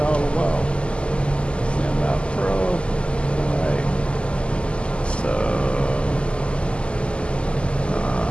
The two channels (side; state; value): right; late; 0.053 ms